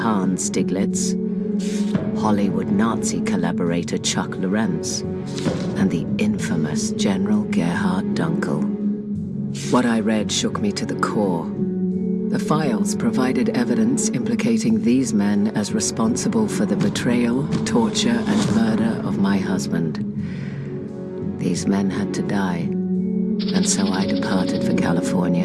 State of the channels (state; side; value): identical; both; correlation 1.00